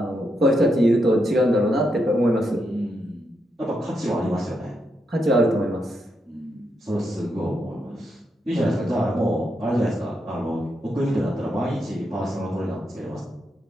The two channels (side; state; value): both; normal; correlation 0.82